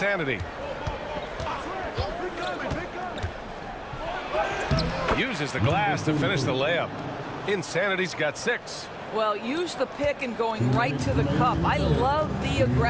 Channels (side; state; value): both; identical; correlation 1.00